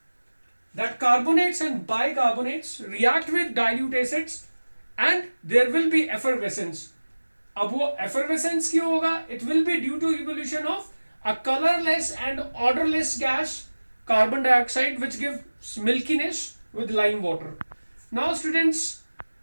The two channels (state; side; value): inverted; both; correlation -1.00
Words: carbonates and bicarbonates react with dilute acids and there will be effervescence. अब वो effervescence क्यों होगा? It will be due to evolution of a colorless and odorless gas, carbon dioxide, which gives milkiness with lime water. Now students,